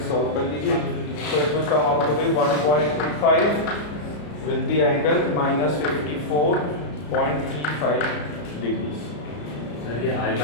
solve कर लीजिए। So it will come out to be 1.25 with the angle minus 54.35 degrees। Sir ये I5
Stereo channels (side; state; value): right; late; 34 ms